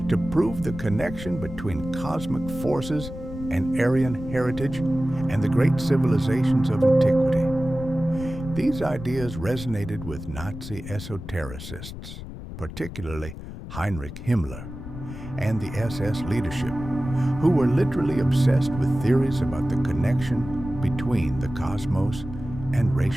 to prove the connection between cosmic forces and Aryan heritage and the great civilizations of antiquity. These ideas resonated with Nazi esotericists, particularly Heinrich Himmler and the SS leadership, who were literally obsessed with theories about the connection between the cosmos and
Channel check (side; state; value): left; noise; rumble, 11 dB below the sound